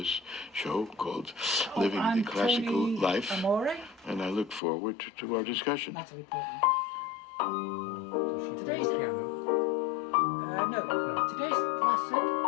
show called Living the Classical Life, and I look forward to our discussion. Natalie Portman. Today's today's lesson,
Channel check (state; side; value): drops out; right; at 4.6 s